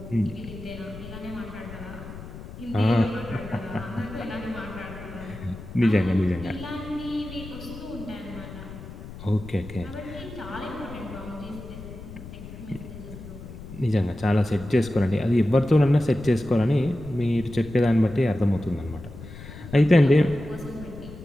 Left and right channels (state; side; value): noise; left; rumble, 13 dB below the sound